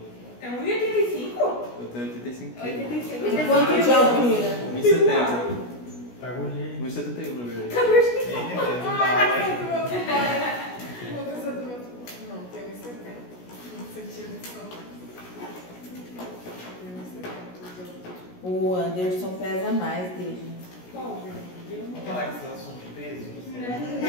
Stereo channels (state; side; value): late; right; 16 ms